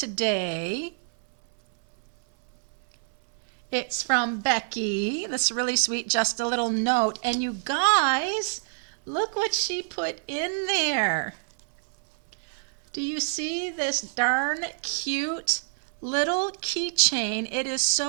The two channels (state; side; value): silent; left; 60 dB below the other